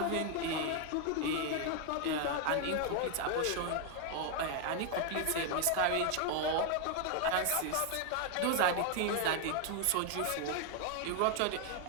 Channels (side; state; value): both; different; correlation 0.01